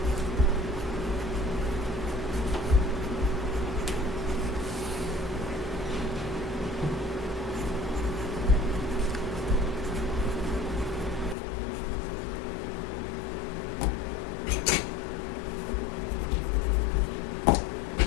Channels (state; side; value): drops out; right; at 11.4 s